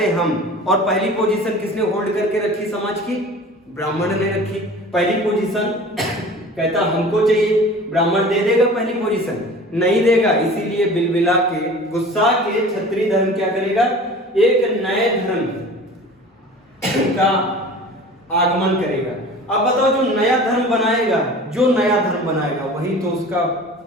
हैं हम, और पहली पोजीशन किसने होल्ड करके रखी समाज की, ब्राह्मण ने रखी। पहली पोजीशन कहता हमको चाहिए, ब्राह्मण दे देगा पहली पोजीशन, नहीं देगा। इसीलिए बिलबिला के, गुस्सा के क्षत्रिय धर्म क्या करेगा, एक नए धर्म का आगमन करेगा। अब बताओ जो नया धर्म बनाएगा, जो नया धर्म बनाएगा वही तो उसका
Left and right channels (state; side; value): normal; both; correlation 0.41